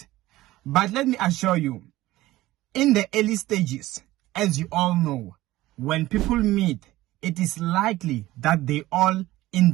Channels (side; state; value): left; quieter; 16.9 dB